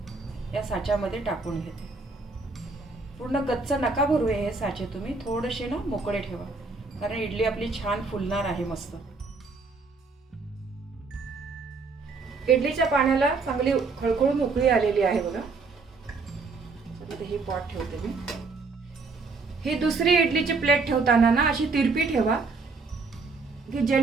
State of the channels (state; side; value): quieter; left; 4.1 dB